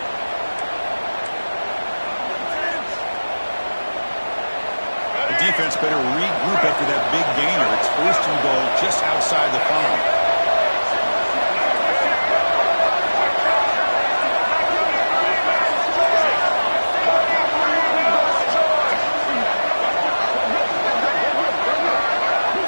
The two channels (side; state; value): both; inverted; correlation -1.00